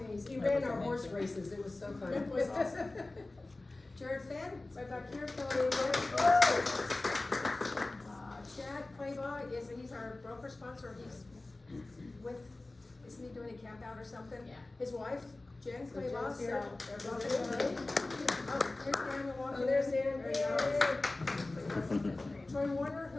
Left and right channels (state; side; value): quieter; right; 3.0 dB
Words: He Amazing. ran our horse races. It was so fun. It was awesome. Jared Fenn, right back here, Chad Claybaugh he's our broker sponsor. He's with, isn't he doing a camp out or something? Yeah. His wife, Jen Claybaugh, so here. they're both here. Oh, here's Daniel walking. Oh, there's Dan. There you go. Troy Warner,